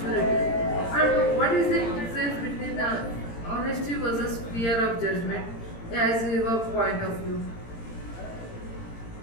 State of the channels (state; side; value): late; right; 18 ms